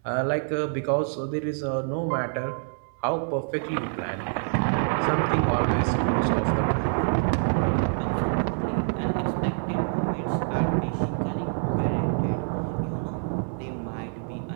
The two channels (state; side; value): silent; left; 61 dB below the other